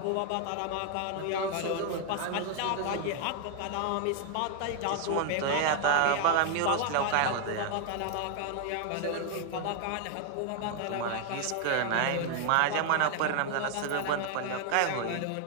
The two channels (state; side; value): different; both; correlation 0.00